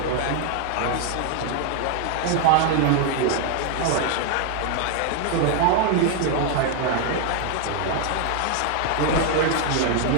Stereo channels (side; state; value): both; different; correlation 0.00